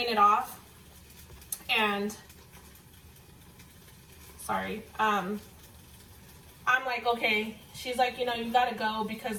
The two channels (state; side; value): identical; both; correlation 1.00